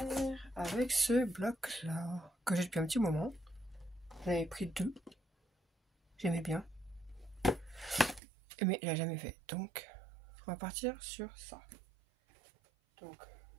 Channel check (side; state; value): left; drops out; at 8.2 s